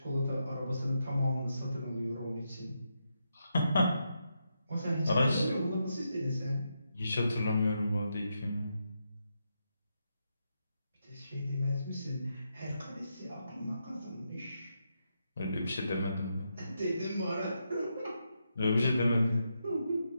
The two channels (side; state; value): both; inverted; correlation -0.83